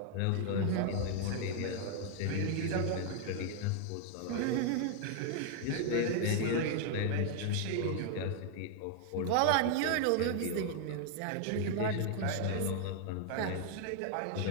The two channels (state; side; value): different; both; correlation 0.00